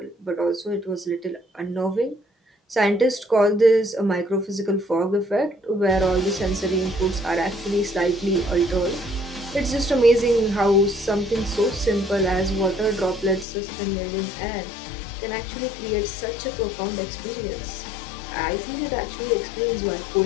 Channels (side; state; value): right; drops out; at 13.5 s